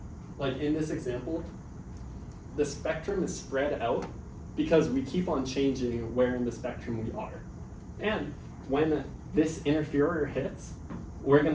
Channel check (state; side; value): identical; both; correlation 1.00